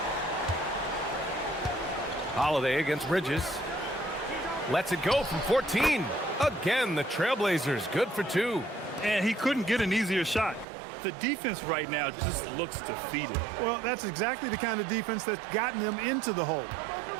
Holiday against Bridges. Lets it go from 14. Again, the Trailblazers good for 2. And he couldn't get an easier shot. The defense right now just looks defeated. Well, that's exactly the kind of defense that's gotten them into the hole.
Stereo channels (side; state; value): left; drops out; at 10.7 s